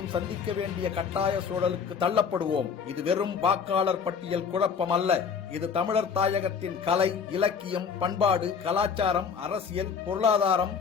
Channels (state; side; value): quieter; right; 6.3 dB